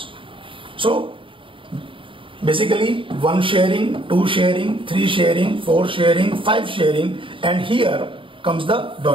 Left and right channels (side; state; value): left; late; 0.25 ms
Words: So basically 1 sharing, 2 sharing, 3 sharing, 4 sharing, 5 sharing, and here comes the